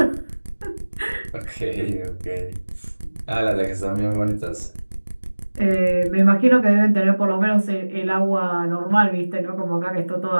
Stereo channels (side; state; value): both; inverted; correlation -1.00